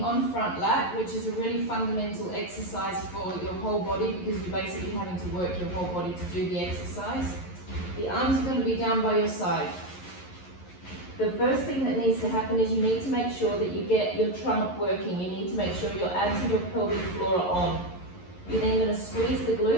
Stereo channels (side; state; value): right; late; 11 ms